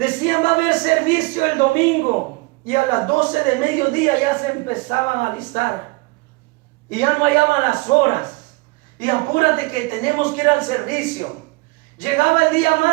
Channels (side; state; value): left; quieter; 25.4 dB